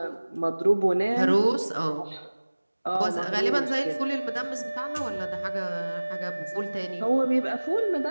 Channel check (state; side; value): inverted; both; correlation -1.00